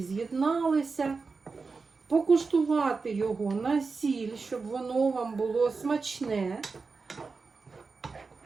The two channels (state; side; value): quieter; left; 4.5 dB